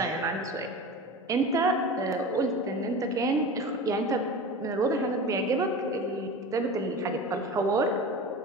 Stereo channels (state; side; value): normal; both; correlation 0.32